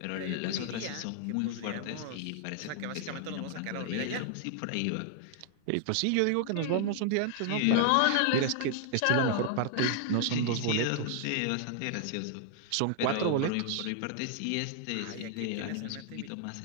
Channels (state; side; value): different; both; correlation 0.00